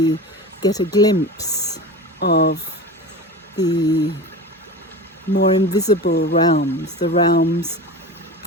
get a glimpse of the more invisible realms, the realms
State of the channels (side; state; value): both; normal; correlation 0.31